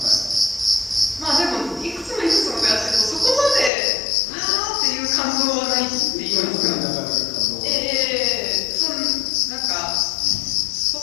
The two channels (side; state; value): right; drops out; at 3.7 s